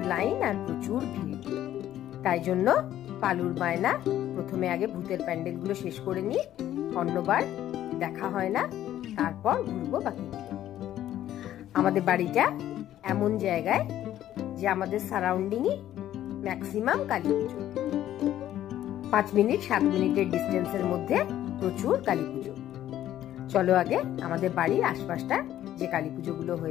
লাইন আর প্রচুর ভিড়। তাই জন্য পালুর বায়না প্রথমে আগে ভূতের প্যান্ডেলগুলো শেষ করে নিই, অন্যবার দেখা হয় না, তারপর ঘুরবো বাকিগুলো। আমাদের বাড়িটা এমন জায়গায় যে আমাদের সারাউন্ডিংই ম্যাক্সিমাম কালী পুজো। 5 মিনিট 7 মিনিটের ডিস্টেন্সের মধ্যে প্রচুর কালী পুজো। চলো আগে আমাদের বাড়ির আশপাশটা যে কালী পুজোগুলো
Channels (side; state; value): right; quieter; 12.3 dB